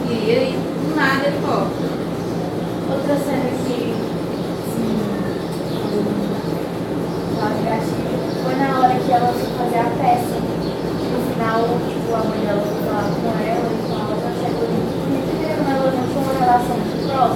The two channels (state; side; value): identical; both; correlation 1.00